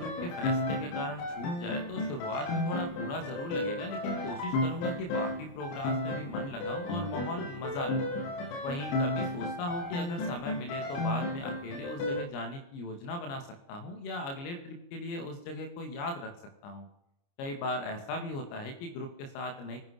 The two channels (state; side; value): late; right; 29 ms